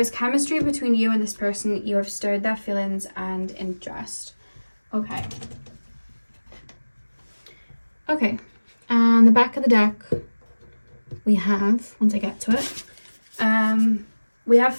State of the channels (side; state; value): both; inverted; correlation -1.00